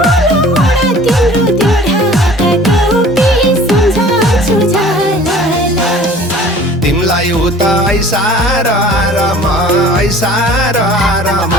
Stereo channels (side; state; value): both; normal; correlation 0.47